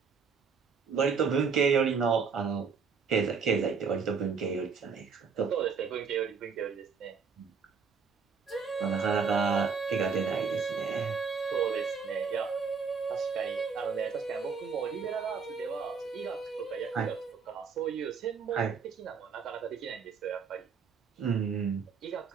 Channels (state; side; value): quieter; left; 5.7 dB